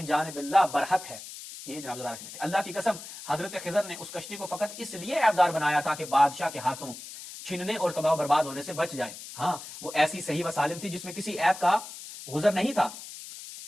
جانب اللہ برحق ہے. یہ جناب ذرا بیٹے اللہ کی قسم حضرت خضر نے اس کشتی کو فقط اس لیے عیبدار بنایا تھا کہ بادشاہ کے ہاتھوں چھیننے اور تباہ و برباد ہونے سے بچ جائے. ہاں وہ ایسی صحیح و سالم تھی جس میں کسی عیب کا گزر نہیں تھا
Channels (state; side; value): noise; left; hiss, 13 dB below the sound